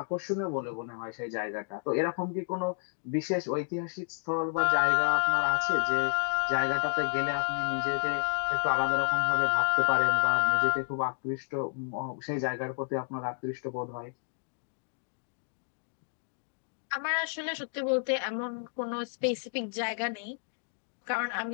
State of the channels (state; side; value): silent; right; digital silence